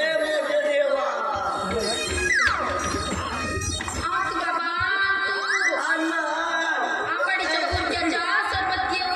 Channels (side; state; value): both; identical; correlation 1.00